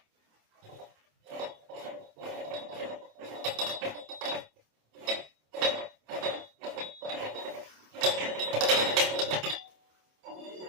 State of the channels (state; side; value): late; left; 27 ms